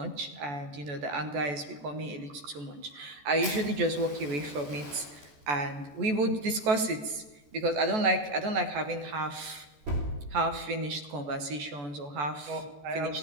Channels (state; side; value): late; left; 14 ms